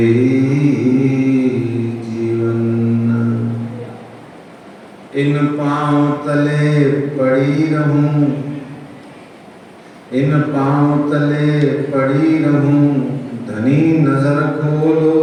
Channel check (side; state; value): both; identical; correlation 1.00